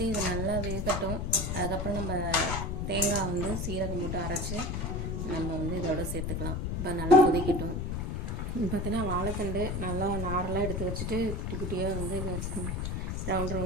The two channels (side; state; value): left; noise; rumble, 2 dB below the sound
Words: இது நல்லா வேகட்டும். அதுக்கப்புறம் நம்ம தேங்காய் வந்து சீரகம் போட்டு அரைச்சி நம்ம வந்து இதோட சேர்த்துக்கலாம். இப்போ நல்லா கொதிக்கட்டும். பார்த்தீங்கன்னா வாழைத்தண்டு நல்லா நாரெலாம் எடுத்து வச்சுட்டு குட்டி குட்டியாக வந்து ரவுண்ட்